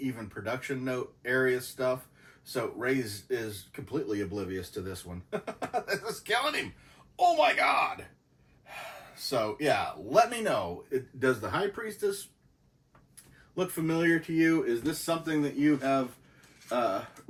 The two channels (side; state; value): both; identical; correlation 1.00